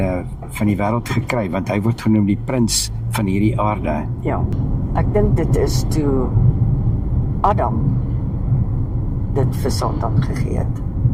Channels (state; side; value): identical; both; correlation 1.00